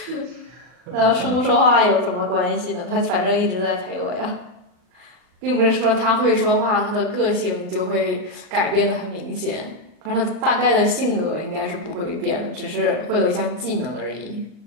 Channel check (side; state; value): left; late; 39 ms